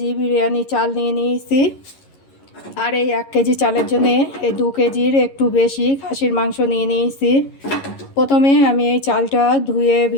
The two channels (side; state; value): right; late; 11 ms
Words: বিরিয়ানি চাল নিয়ে নিয়েছি। আর এই 1 কেজি চালের জন্য এই 2 কেজির একটু বেশি খাসির মাংস নিয়ে নিয়েছি। প্রথমে আমি এই চালটা ধুয়ে